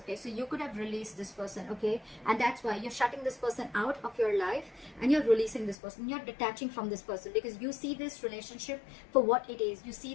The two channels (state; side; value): drops out; right; at 5.8 s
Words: so you could have released this person. Okay, and that's why you're shutting this person out of your life, and you're releasing this person. You're detaching from this person because you see this relationship for what it is. You